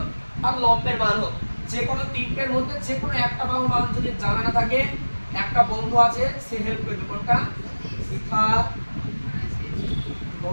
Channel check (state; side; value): inverted; both; correlation -1.00